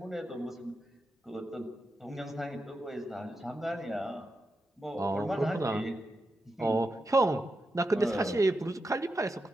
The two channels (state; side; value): normal; both; correlation 0.88